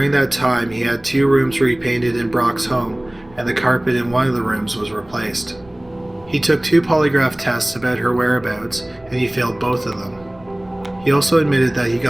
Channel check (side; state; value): right; noise; rumble, 25 dB below the sound